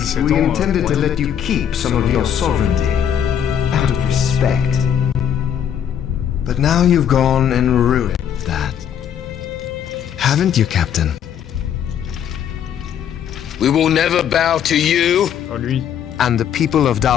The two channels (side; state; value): right; quieter; 9.1 dB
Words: we intended to let you keep some of your sovereignty, out of respect. But now you've gone and ruined that. Haven't you, Captain? We will never bow to you. Oh, lui. And the people of